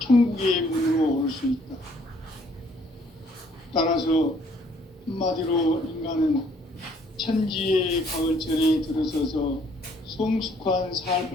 문으로 올 수 있다. 따라서 한마디로 인간은 천지의 가을철에 들어서서 성숙한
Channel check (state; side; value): normal; both; correlation 0.63